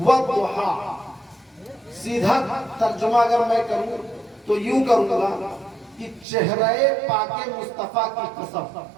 وَالضُّحَىٰ سیدھا ترجمہ اگر میں کروں تو یوں کروں گا کہ چہرہ پاک مصطفیٰ کی قسم،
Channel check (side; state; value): left; drops out; at 6.2 s